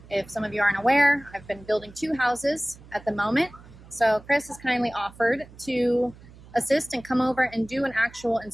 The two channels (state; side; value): noise; right; hum, 21 dB below the sound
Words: If some of you aren't aware, I've been building 2 houses at the moment. So Chris has kindly offered to assist and come over and do an actual